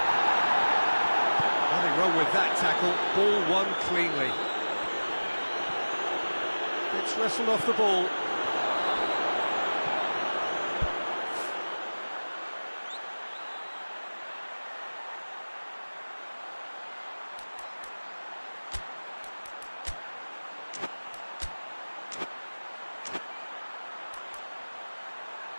Nothing wrong with that tackle. Ball won cleanly. It's wrestled off the ball.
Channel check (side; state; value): both; inverted; correlation -1.00